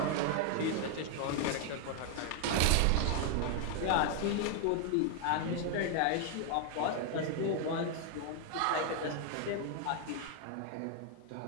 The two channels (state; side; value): different; both; correlation 0.00